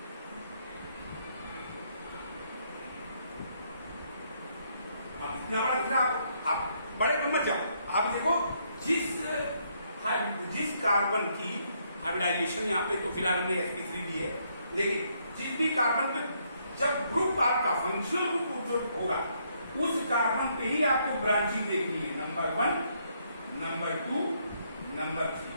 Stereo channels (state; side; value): inverted; both; correlation -0.72